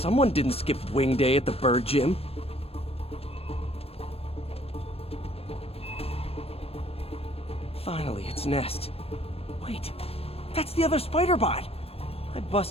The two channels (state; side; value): late; right; 0.29 ms